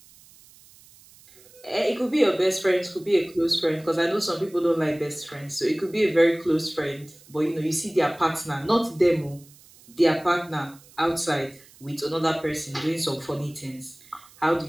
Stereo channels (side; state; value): right; noise; hiss, 25 dB below the sound